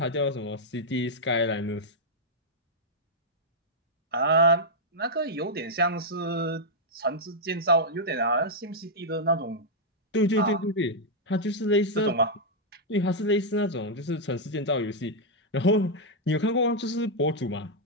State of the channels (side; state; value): both; normal; correlation -0.04